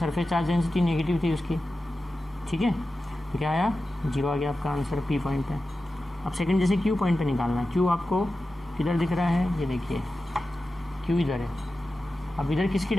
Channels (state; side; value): normal; both; correlation 0.93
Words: चार्ज डेंसिटी नेगेटिव थी उसकी, ठीक है। तो क्या आया 0 आ गया आपका आंसर पी पॉइंट पे। अब सेकंड जैसे क्यू पॉइंट पे निकालना है, क्यू आपको किधर दिख रहा है, ये देखिए क्यू इधर है। अब इधर किसकी